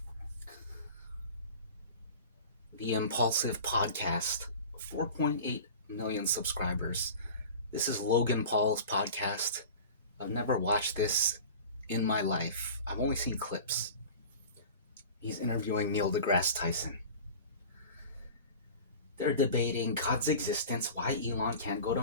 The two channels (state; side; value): inverted; both; correlation -0.37